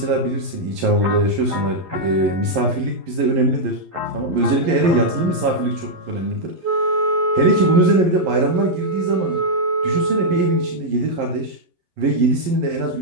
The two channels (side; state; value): left; late; 11 ms